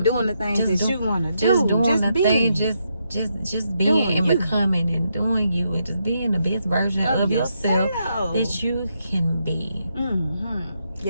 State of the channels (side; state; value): both; inverted; correlation -0.80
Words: doing the things Just that you want to do. Just doing the being. thing, just being Doing and you. becoming and doing you and just being the best version of yourself that you can be. Mm-hmm.